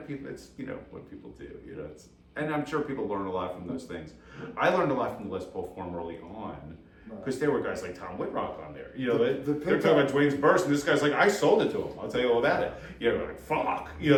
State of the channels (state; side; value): identical; both; correlation 1.00